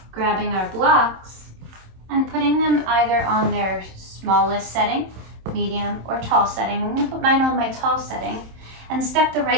Grabbing our blocks and putting them either on their smallest setting, medium, or tall setting. I'm going to put mine on my tall setting and step the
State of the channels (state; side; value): late; left; 27 ms